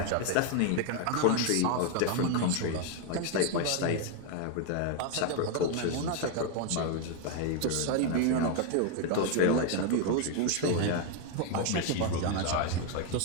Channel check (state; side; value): different; both; correlation 0.01